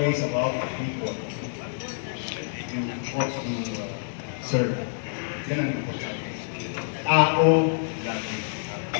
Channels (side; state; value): right; silent; digital silence